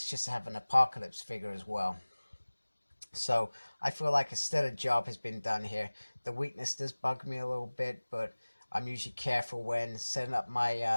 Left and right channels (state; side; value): inverted; both; correlation -1.00